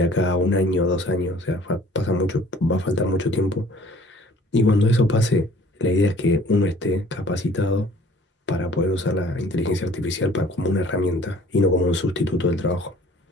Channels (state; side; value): normal; both; correlation 0.52